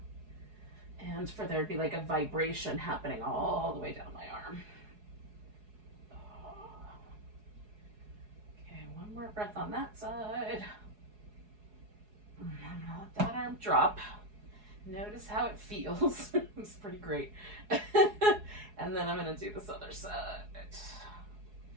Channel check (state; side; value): late; left; 4.8 ms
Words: and for there to be like a vibration happening all the way down my arm. Okay, one more breath on that side. Let that arm drop. Notice how it feels. It's pretty great. And then I'm going to do this other side.